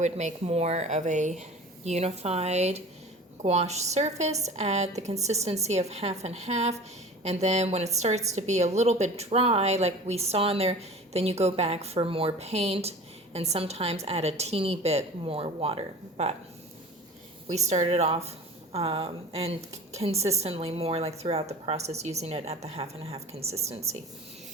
make more of a unified gouache surface at the consistency of half and half. And then when it starts to be a little bit dry, like we saw in there, then you go back for more paint and sometimes add a teeny bit more water. But we started off and consistently more like throughout the process using it at the half and half consistency.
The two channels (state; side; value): normal; both; correlation 0.40